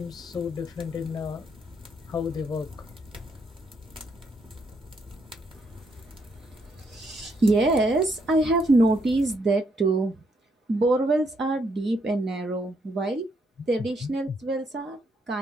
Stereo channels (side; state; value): both; normal; correlation 0.74